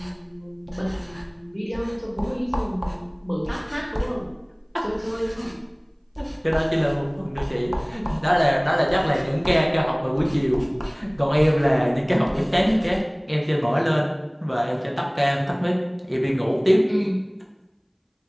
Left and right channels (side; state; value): both; identical; correlation 1.00